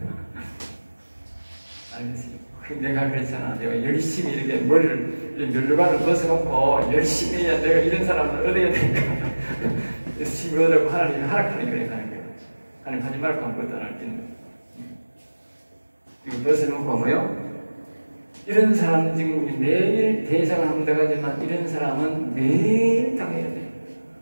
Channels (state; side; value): inverted; both; correlation -1.00